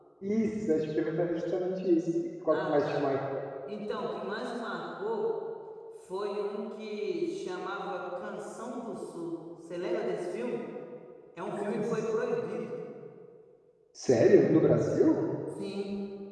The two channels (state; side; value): identical; both; correlation 1.00